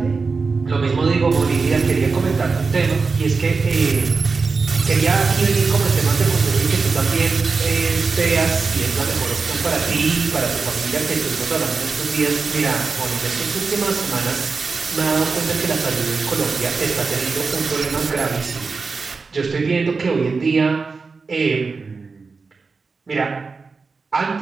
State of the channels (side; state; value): left; quieter; 4.5 dB